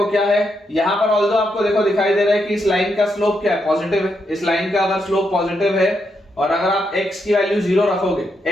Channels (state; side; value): normal; both; correlation 0.81